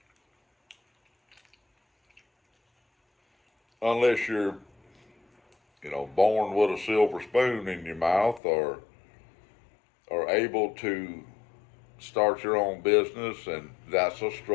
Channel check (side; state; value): right; drops out; at 8.4 s